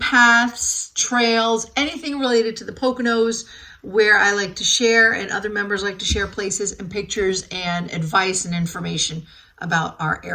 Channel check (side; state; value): both; identical; correlation 1.00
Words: trails, anything related to the Poconos, where I like to share and other members like to share places and pictures and advice and information about our